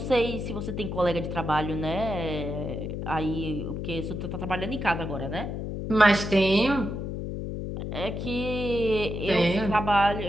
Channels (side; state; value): left; noise; hum, 5 dB below the sound